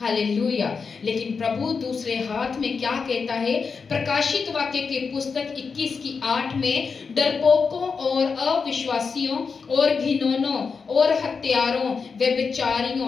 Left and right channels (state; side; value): quieter; right; 5.3 dB